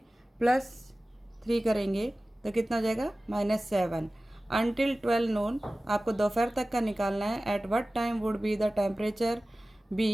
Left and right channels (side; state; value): both; normal; correlation 0.97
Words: +3 करेंगे तो कितना हो जाएगा, -7। अनटिल 12 नून, आपको दोपहर तक का निकालना है। At what time would be the temperature